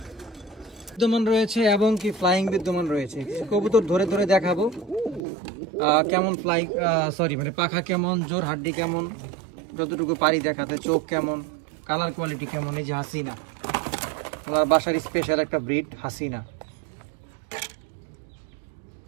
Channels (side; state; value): left; drops out; at 5.2 s